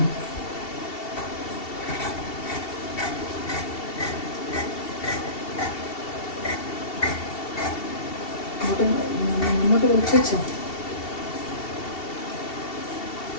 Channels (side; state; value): right; late; 2.7 ms